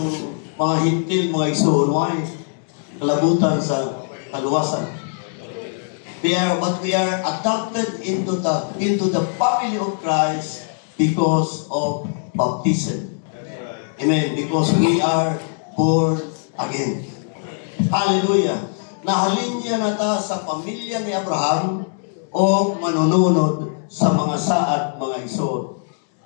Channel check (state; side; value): silent; right; digital silence